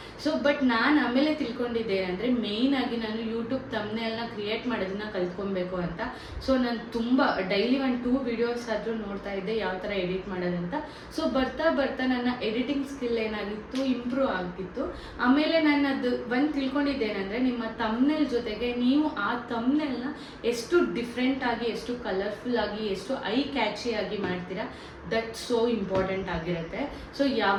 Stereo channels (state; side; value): identical; both; correlation 1.00